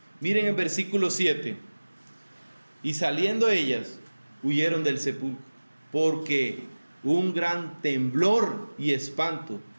Miren el versículo 7. Y saliendo ellas, huyeron del sepulcro, porque un gran temblor y espanto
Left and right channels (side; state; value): both; inverted; correlation -1.00